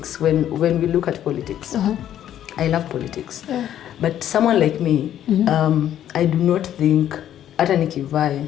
When we look at politics, I love politics. Yeah. But someone like me, I do not think hata nikivai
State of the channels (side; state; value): right; quieter; 11.0 dB